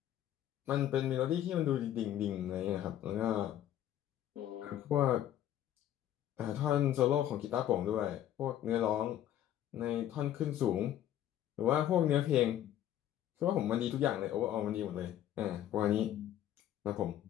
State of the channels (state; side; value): quieter; right; 11.6 dB